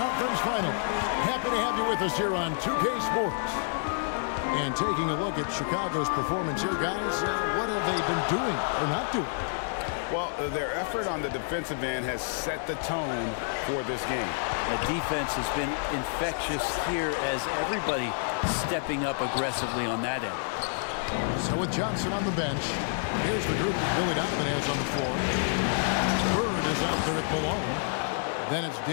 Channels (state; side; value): silent; right; 59 dB below the other